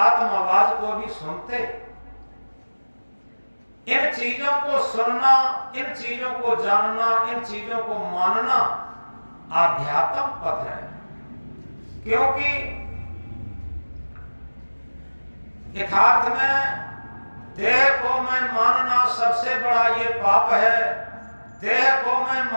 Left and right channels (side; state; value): both; inverted; correlation -1.00